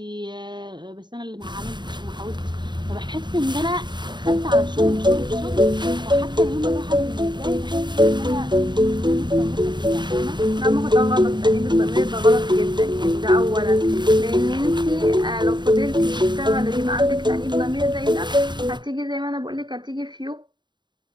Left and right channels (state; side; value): late; left; 0.22 ms